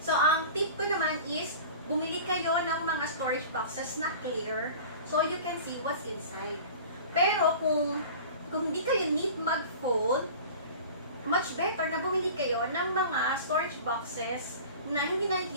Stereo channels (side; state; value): both; inverted; correlation -0.39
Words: ang tip ko naman is, bumili kayo ng mga storage boxes na clear so you can see what's inside. Pero kung hindi kayo need mag-fold, much better na bumili kayo ng mga storage boxes na hindi